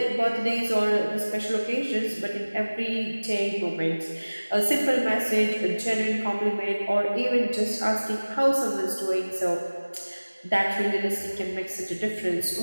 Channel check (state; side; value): inverted; both; correlation -1.00